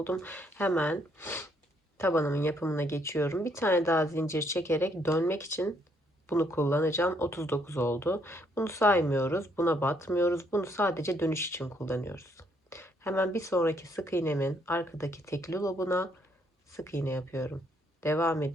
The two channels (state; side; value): normal; both; correlation 0.70